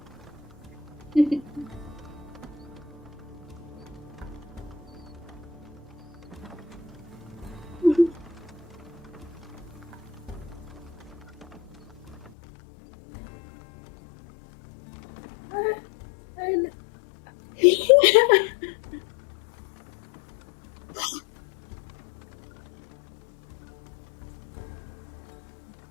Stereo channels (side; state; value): right; drops out; at 12.3 s